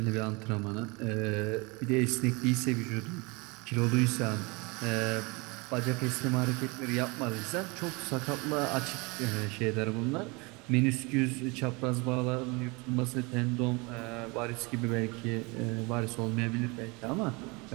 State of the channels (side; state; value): left; quieter; 27.5 dB